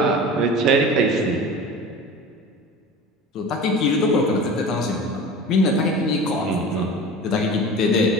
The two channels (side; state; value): both; normal; correlation 0.36